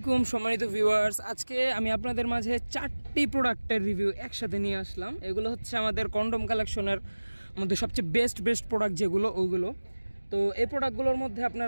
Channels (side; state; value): both; inverted; correlation -1.00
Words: সম্মানিত ভিউয়ার্স, আজকে আমি আপনাদের মাঝে 4টি প্রোডাক্টের রিভিউ একসাথে নিয়ে আসলাম। এগুলো হচ্ছে আমাদের কন্ডম কালেকশনের মধ্যে সবচেয়ে বেস্ট প্রোডাক্ট যেগুলো ওগুলো। তো এই প্রোডাক্টগুলোর মধ্যে আপনার